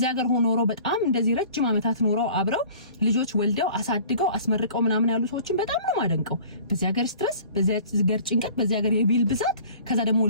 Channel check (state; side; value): inverted; both; correlation -0.47